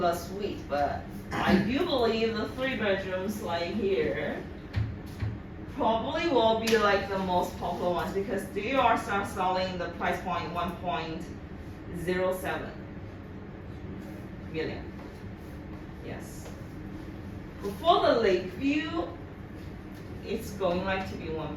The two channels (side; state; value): both; identical; correlation 1.00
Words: suite, but I do believe the 3 bedrooms like here probably will be like the most popular ones because they are start selling the price point 1.07 million. Yes. For the Lakeview, it's going like to be